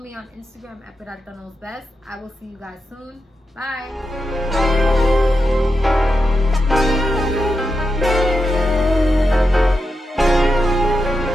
on Instagram at Peralta Knows Best. I will see you guys soon. Bye.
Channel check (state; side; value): normal; both; correlation 0.87